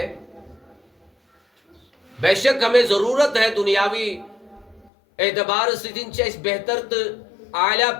بے شک ہمیں ضرورت ہے دنیاوی اعتبار سے دن چاہیے بہتر تو اعلیٰ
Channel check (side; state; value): right; drops out; at 4.9 s